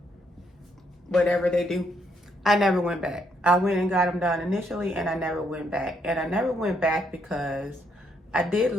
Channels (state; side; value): normal; both; correlation 0.74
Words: whatever they do. I never went back. I went and got them done initially and I never went back. And I never went back because I did